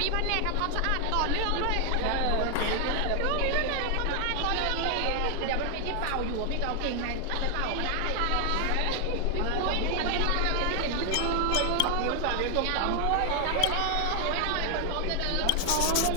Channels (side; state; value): both; different; correlation 0.00